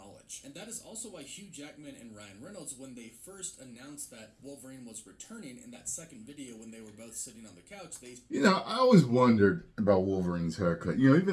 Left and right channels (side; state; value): both; identical; correlation 1.00